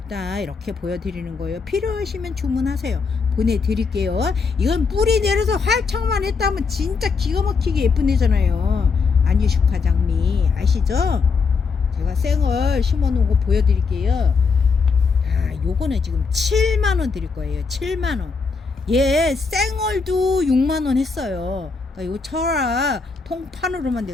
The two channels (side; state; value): right; quieter; 4.9 dB